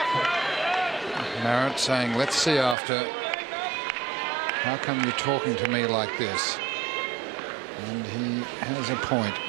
Marat saying, let's see after. How come you're talking to me like this? And he has a point.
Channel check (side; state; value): left; drops out; at 2.8 s